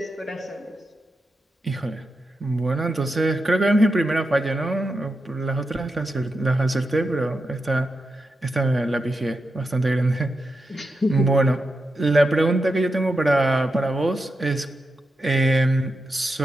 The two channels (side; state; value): both; normal; correlation 0.88